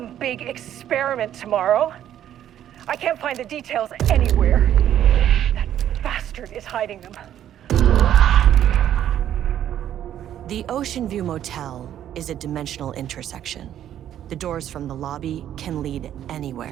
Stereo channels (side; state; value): left; quieter; 11.0 dB